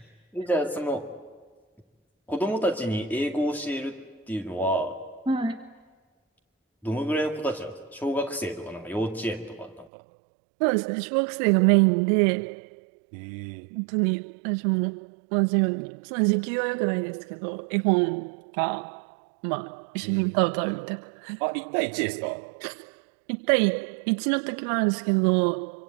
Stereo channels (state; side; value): drops out; left; at 9.9 s